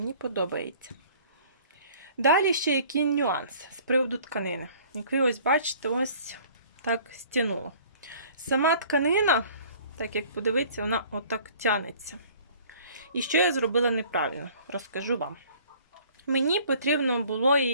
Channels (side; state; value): both; inverted; correlation -0.52